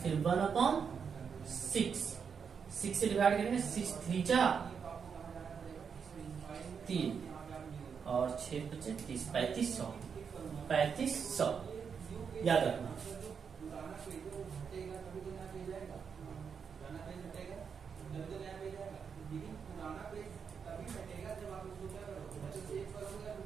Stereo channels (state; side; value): quieter; left; 6.5 dB